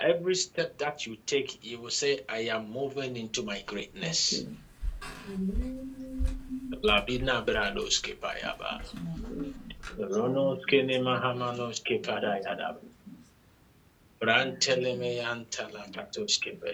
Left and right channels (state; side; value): identical; both; correlation 1.00